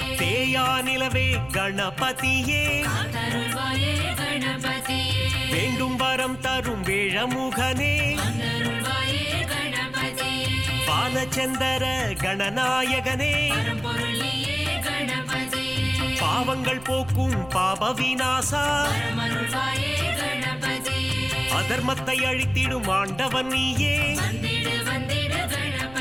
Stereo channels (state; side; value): noise; right; rumble, 19 dB below the sound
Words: அழியா நிலவே கணபதியே காத்தருள்வாயே கணபதியே வேண்டும் வரம் தரும் வேழமுகனே வந்தருள்வாயே கணபதியே பாலச்சந்தர கணநாயகனே பரம்பொருளியே கணபதியே பாவங்கள் போக்கும் பாப விநாசா பரமருள்வாயே கணபதியே அதர்மத்தை அழித்திடும் ஆண்டவன் நீயே வந்திடு வந்திடு